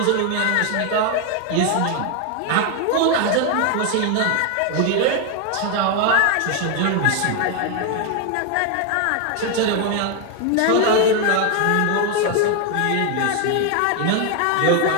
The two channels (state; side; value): different; both; correlation 0.01